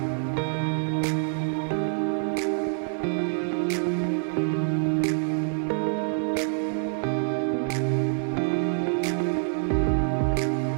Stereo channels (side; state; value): left; silent; 61 dB below the other